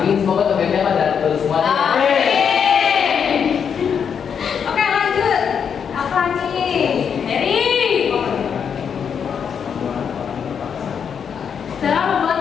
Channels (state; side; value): quieter; right; 7.2 dB